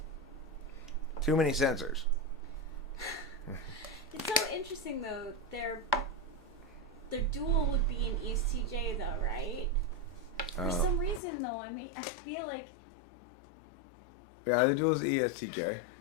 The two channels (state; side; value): drops out; right; at 11.2 s